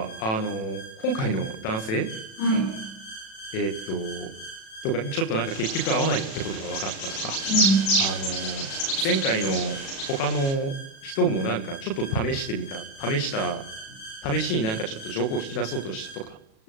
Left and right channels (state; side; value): late; right; 36 ms